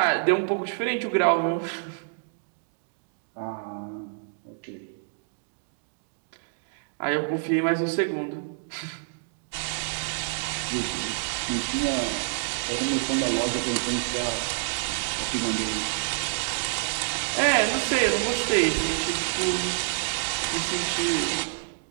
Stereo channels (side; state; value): left; silent; digital silence